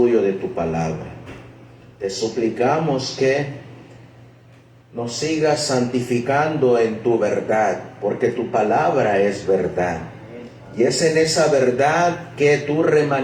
de tu palabra. Te suplicamos que nos sigas santificando en tu verdad, porque tu palabra es verdad. Y es en esa verdad que tu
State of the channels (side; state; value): both; identical; correlation 1.00